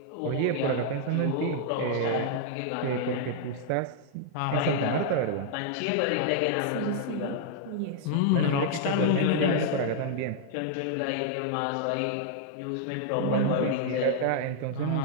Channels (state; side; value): different; both; correlation -0.01